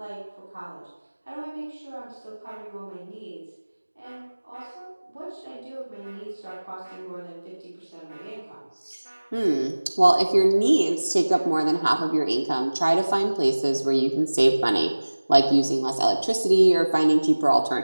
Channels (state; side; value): inverted; both; correlation -1.00